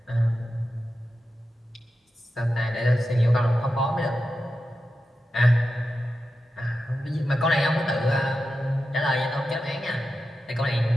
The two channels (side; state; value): both; normal; correlation 0.90